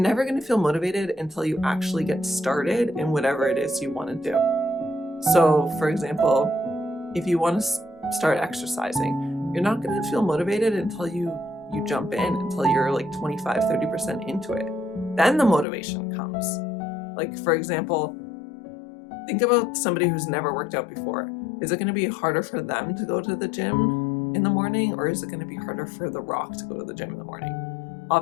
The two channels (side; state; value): right; drops out; at 15.7 s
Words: going to feel motivated until you actually get started in whatever it is you want to do. So, for example, if you want to start exercising, you're not going to feel motivated until you jump in, until you're like 25-30% into it. Then the motivation comes. Like, for example, think about somebody who's never worked out before. Is it going to be harder for them to go to the gym in the morning, or is it going to be harder for The Rock to go to the gym in the morning?